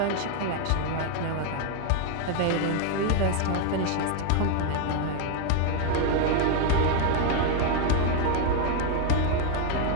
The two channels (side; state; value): both; different; correlation 0.01